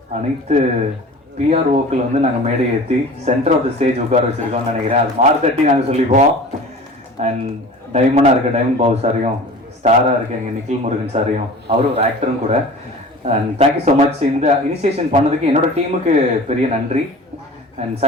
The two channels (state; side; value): normal; both; correlation 0.40